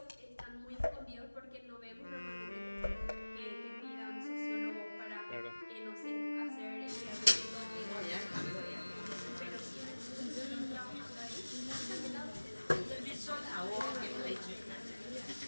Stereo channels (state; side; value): inverted; both; correlation -1.00